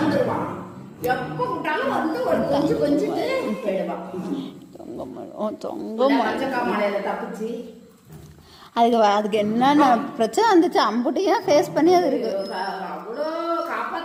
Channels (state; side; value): identical; both; correlation 1.00